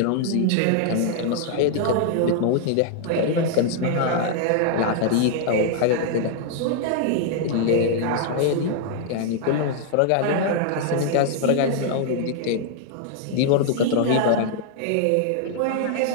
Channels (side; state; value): both; different; correlation -0.01